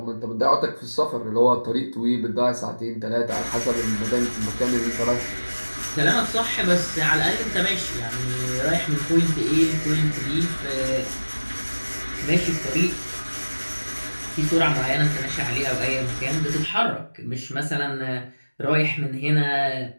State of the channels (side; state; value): both; inverted; correlation -1.00